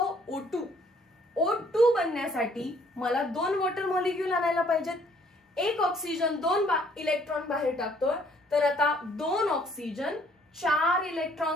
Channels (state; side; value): normal; both; correlation 0.62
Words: O2. O2 बनण्यासाठी मला 2 वॉटर मॉलिक्यूल आणायला पाहिजेत. एक ऑक्सिजन 2 इलेक्ट्रॉन बाहेर टाकतोय, तर आता 2 ऑक्सिजन 4